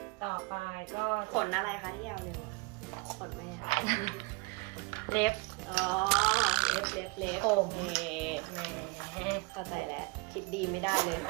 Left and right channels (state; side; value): quieter; left; 28.5 dB